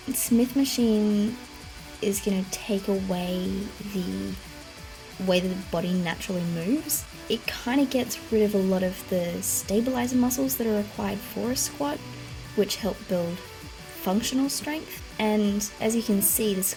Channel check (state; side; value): identical; both; correlation 1.00